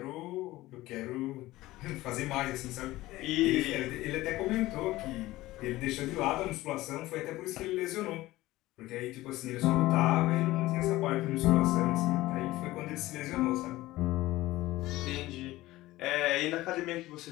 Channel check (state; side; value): quieter; right; 17.6 dB